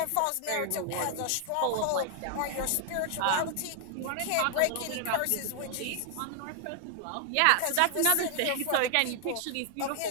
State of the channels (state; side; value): different; both; correlation 0.00